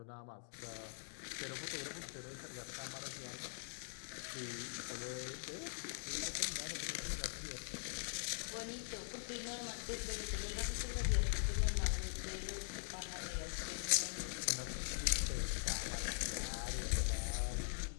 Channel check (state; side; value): silent; right; digital silence